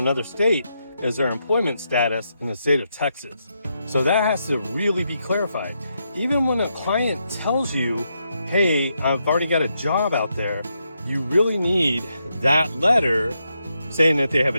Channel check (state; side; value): inverted; both; correlation -0.82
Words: state is their employment status in the state of Texas. So that has to really be clarified. Even when a client tells you, hey, I've already got a job out there, you really need that letter saying that they have